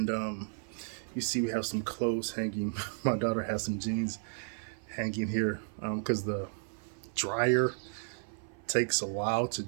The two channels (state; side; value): silent; left; 55 dB below the other